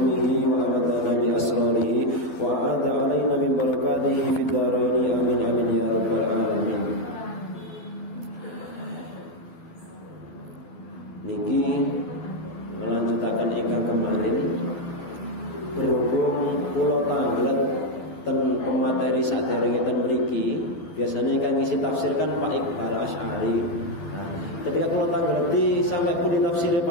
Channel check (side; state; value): right; late; 12 ms